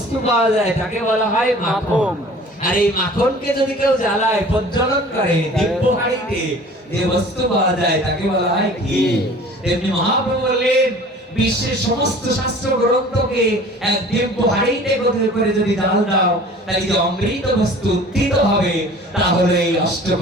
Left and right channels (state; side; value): normal; both; correlation 0.46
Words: পাওয়া যায় তাকে বলা হয় মাখন আর এই মাখনকে যদি কেউ জ্বালায় প্রজ্বলন করে দিব্য হাঁড়িতে যে বস্তু পাওয়া যায় তাকে বলা হয় ঘি তেমনি মহাপ্রভু বললেন বিশ্বের সমস্ত শাস্ত্র গ্রন্থকে এক দিব্য হাঁড়িতে করে যদি ঢাল দাও তাহলে যে অমৃত বস্তু উত্থিত হবে তাহলে এই